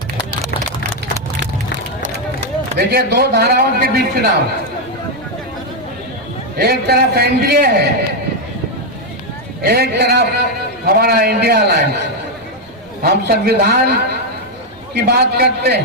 देखिए, 2 धाराओं के बीच चुनाव, एक तरफ एनडीए है, एक तरफ हमारा इंडिया अलायंस। हम संविधान की बात करते हैं,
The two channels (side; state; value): right; noise; rumble, 26 dB below the sound